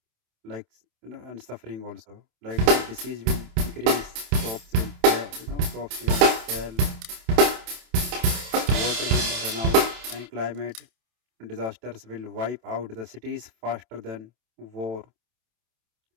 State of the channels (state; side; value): late; left; 27 ms